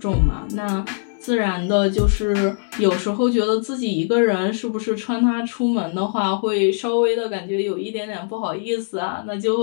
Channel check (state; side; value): silent; right; digital silence